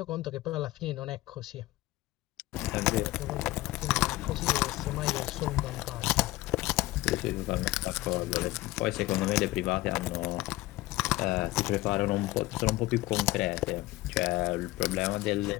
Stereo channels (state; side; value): quieter; right; 18.3 dB